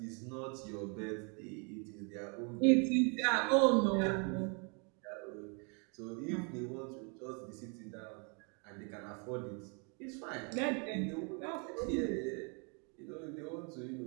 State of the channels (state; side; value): quieter; left; 36.0 dB